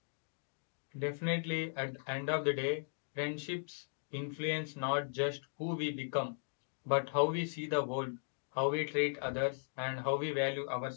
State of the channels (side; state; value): right; silent; digital silence